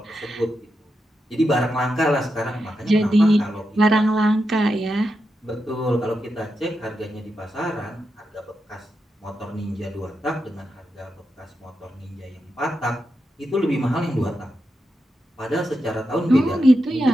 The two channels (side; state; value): both; normal; correlation 0.87